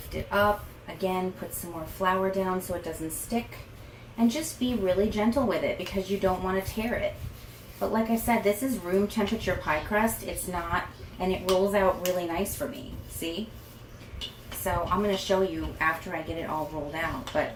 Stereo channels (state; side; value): identical; both; correlation 1.00